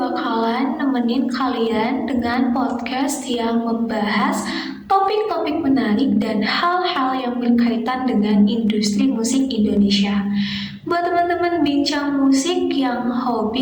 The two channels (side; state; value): both; identical; correlation 1.00